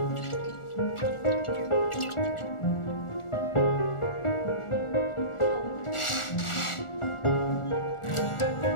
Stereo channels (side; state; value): right; late; 1.4 ms